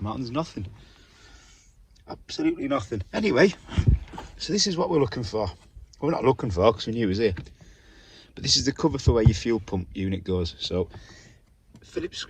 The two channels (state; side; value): identical; both; correlation 1.00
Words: out, and there's nothing. Absolutely nothing. Anyway, so this is what we're looking for. Well, we're not looking for because we knew it was here. But this is the cover for where your fuel pump unit goes. So, Phillips